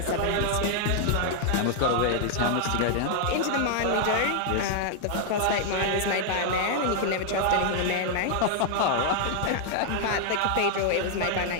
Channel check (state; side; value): different; both; correlation 0.00